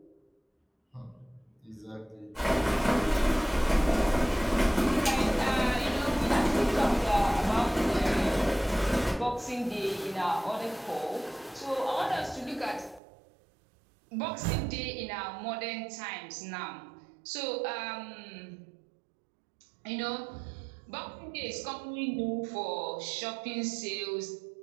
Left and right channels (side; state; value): left; drops out; at 13.0 s